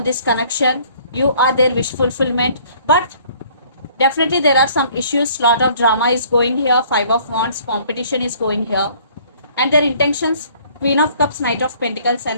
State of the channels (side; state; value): both; inverted; correlation -0.57